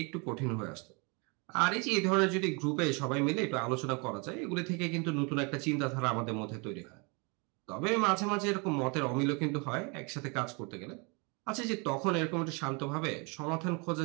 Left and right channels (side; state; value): left; quieter; 31.5 dB